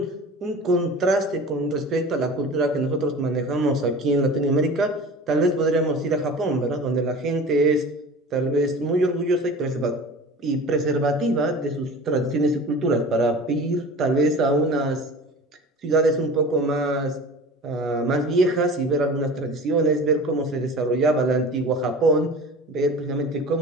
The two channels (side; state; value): both; normal; correlation 0.38